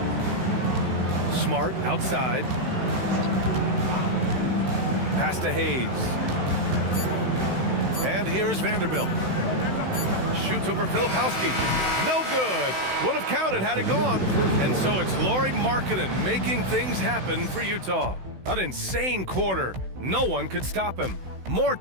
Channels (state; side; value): late; left; 16 ms